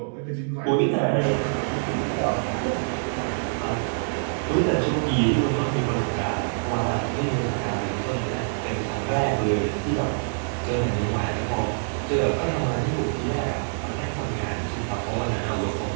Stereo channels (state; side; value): silent; left; 60 dB below the other